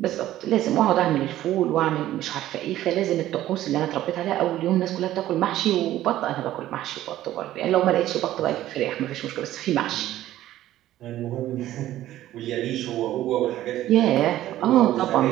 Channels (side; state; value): left; quieter; 13.9 dB